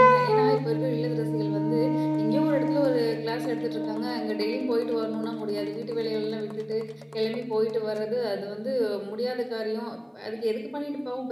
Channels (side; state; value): both; identical; correlation 1.00